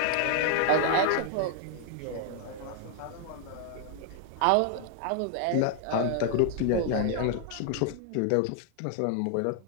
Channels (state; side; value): different; both; correlation 0.00